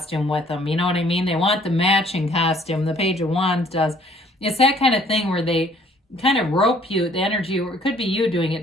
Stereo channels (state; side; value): normal; both; correlation 0.59